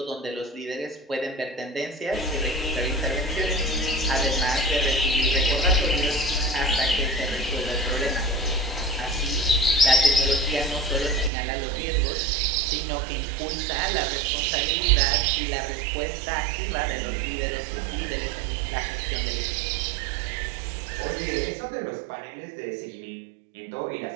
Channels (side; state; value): left; drops out; at 11.3 s